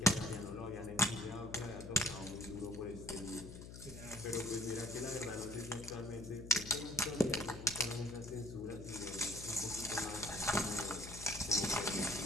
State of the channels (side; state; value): left; noise; hum, 12 dB below the sound